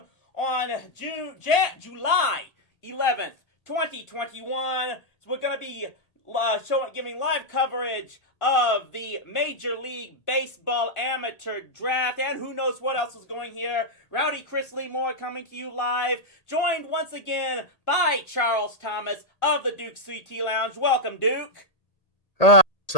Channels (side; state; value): right; late; 1.8 ms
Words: on July 11th, 2021. So we're gonna be giving live coverage of the Major League Baseball Amateur Draft, and who knows what else is going here. Rowdy Chris Lee Moore coming to you live, joined once again by Charles Thomas of the Duke CT Lounge. Welcome, Duke. What's